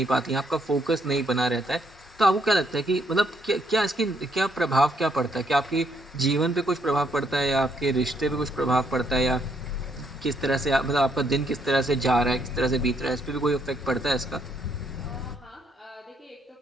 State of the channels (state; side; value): normal; both; correlation 0.72